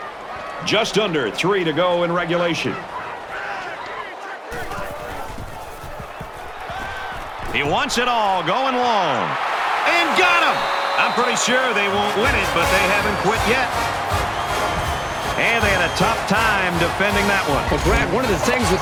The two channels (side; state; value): both; identical; correlation 1.00